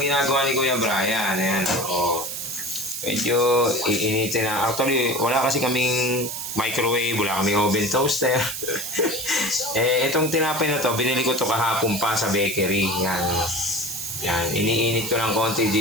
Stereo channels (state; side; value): noise; right; hiss, 6 dB below the sound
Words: ni Kuya Brian. Ayan, medyo iinitin na. Actually, wala kasi kaming microwave, wala kaming oven toaster. Itong tinapay na to, binili ko to kahapon pa sa bakery. Yan, iniinit ko ng konti